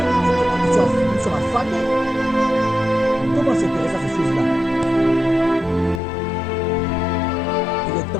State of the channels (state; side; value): drops out; right; at 6.0 s